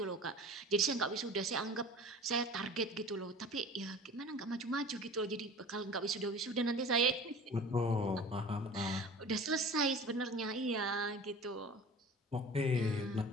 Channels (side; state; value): both; normal; correlation 0.40